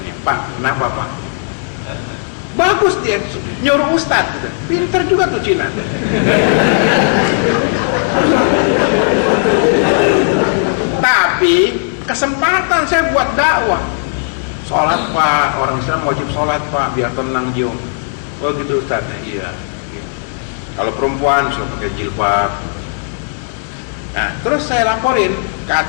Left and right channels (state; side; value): silent; right; digital silence